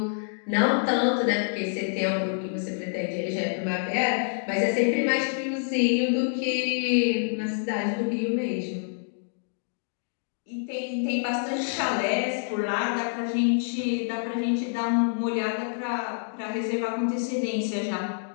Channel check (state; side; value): silent; right; digital silence